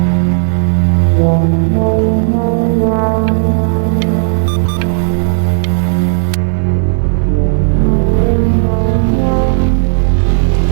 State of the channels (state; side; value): silent; left; digital silence